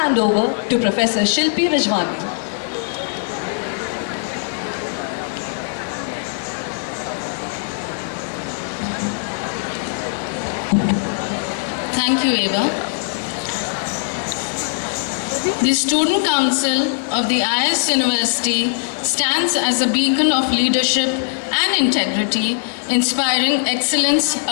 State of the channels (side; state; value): right; silent; 66 dB below the other